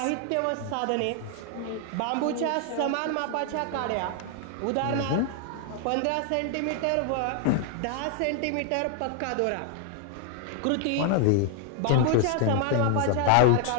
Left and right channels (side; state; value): both; different; correlation 0.00